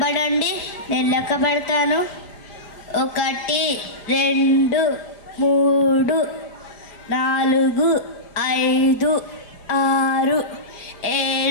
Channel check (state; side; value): late; right; 5.1 ms